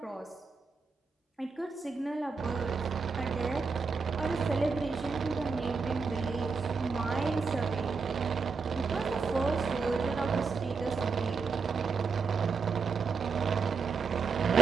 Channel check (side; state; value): left; quieter; 4.9 dB